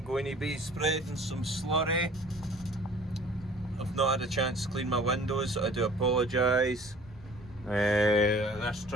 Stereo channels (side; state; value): both; normal; correlation 0.50